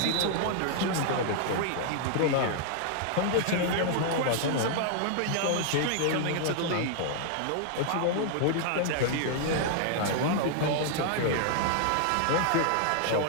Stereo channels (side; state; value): both; different; correlation 0.00